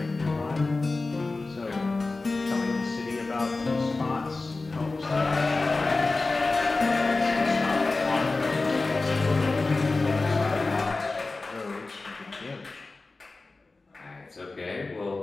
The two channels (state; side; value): quieter; right; 3.5 dB